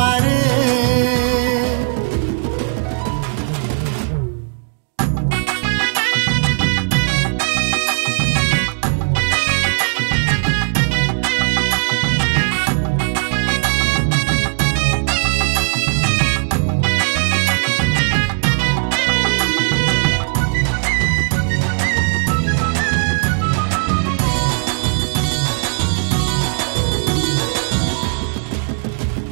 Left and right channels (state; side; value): silent; left; 57 dB below the other